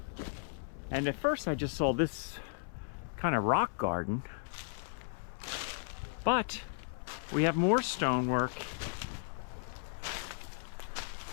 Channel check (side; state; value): right; silent; 54 dB below the other